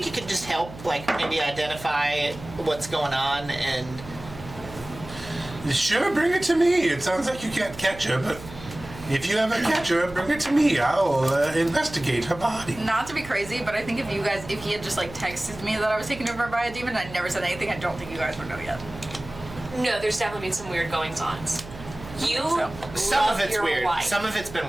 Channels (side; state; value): right; noise; hum, 15 dB below the sound